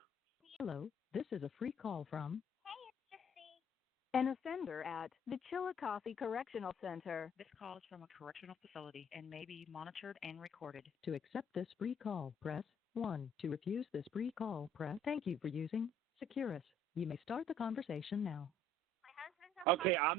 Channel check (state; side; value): normal; both; correlation 0.59